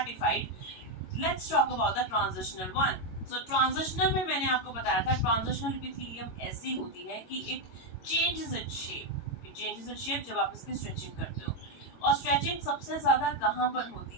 Let's talk about the transitional one. So transitional में मैंने आपको बताया था, ट्रांजिशनल एपिथेलियम ऐसी होती है कि it changes its shape. It changes its shape जब आप इसकी स्ट्रेचिंग करते हो। और स्ट्रेचिंग सबसे ज्यादा कहाँ पर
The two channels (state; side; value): late; right; 22 ms